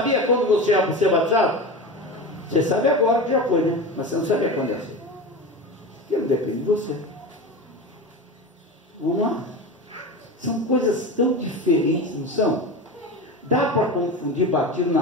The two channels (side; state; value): both; normal; correlation 0.26